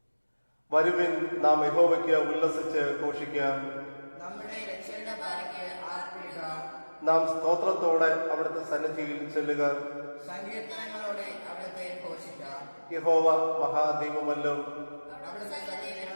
വരുവിൻ, നാം യഹോവയ്ക്ക് ഉല്ലസിച്ച് ഘോഷിക്കാം. നാം സ്തോത്രത്തോടെ അവിടുത്തെ സന്നിധിയിൽ ചെല്ലുക. സങ്കീർത്തനങ്ങളോടെ അവിടുത്തെ ഘോഷിക്കാം. യഹോവ മഹാദൈവമല്ലോ,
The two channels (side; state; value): both; inverted; correlation -1.00